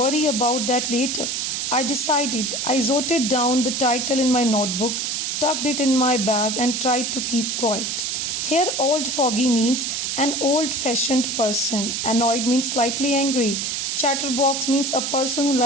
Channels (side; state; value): right; noise; hiss, 1 dB below the sound